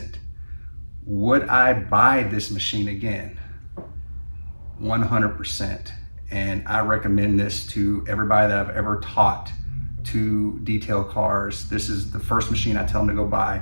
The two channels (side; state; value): both; inverted; correlation -1.00